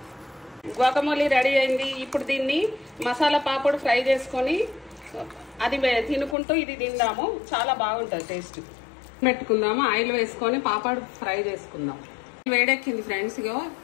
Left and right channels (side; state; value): right; drops out; at 6.4 s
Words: గ్వాకమోలీ రెడీ అయింది. ఇప్పుడు దీన్ని మసాలా పాపడు ఫ్రై చేసుకొని అది తినుకుంటూ ఇది తిందాము. చాలా బాగుంటుంది టేస్ట్. పెట్టుకుందాము, ఆయిల్ వేసుకొని పాపడు ఫ్రై చేసుకుందాం. వేడెక్కింది ఫ్రెండ్స్, ఇగో